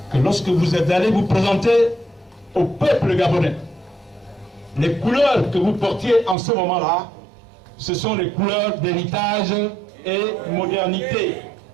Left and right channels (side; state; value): left; drops out; at 6.4 s